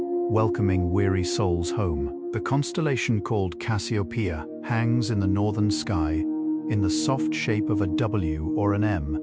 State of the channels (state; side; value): identical; both; correlation 1.00